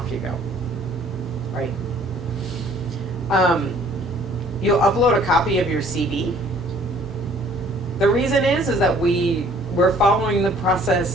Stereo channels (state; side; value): normal; both; correlation 0.57